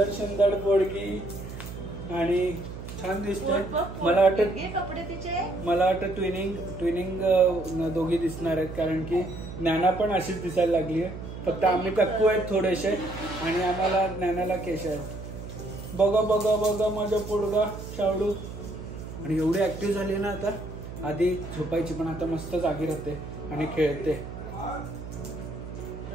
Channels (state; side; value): noise; right; hum, 10 dB below the sound